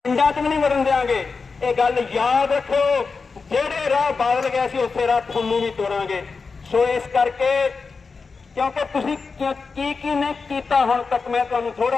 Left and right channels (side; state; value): right; quieter; 4.7 dB